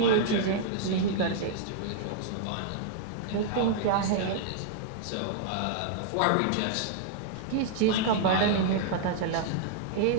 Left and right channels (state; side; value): different; both; correlation -0.01